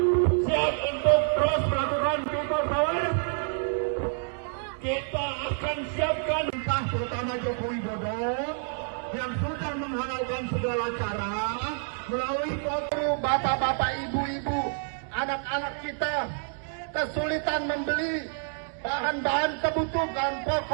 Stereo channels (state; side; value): silent; left; 59 dB below the other